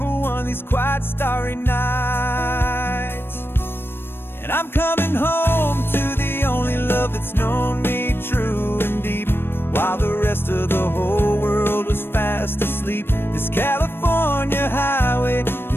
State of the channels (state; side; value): late; right; 0.10 ms